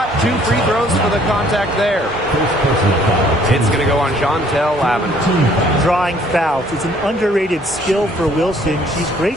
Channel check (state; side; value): normal; both; correlation 0.61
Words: 2 free throws for the contact there. It's going to go on Chantel Lavender. Drawing fouls. It's an underrated skill for Wilson. She's